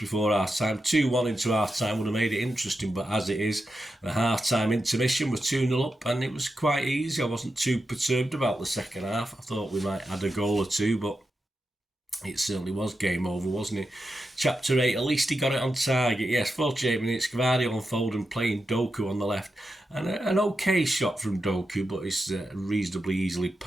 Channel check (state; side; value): normal; both; correlation 0.88